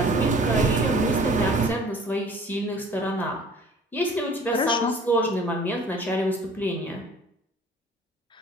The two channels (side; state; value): both; normal; correlation 0.50